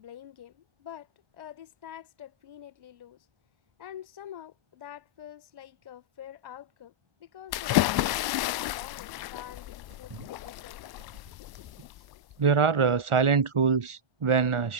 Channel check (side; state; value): left; late; 1.1 ms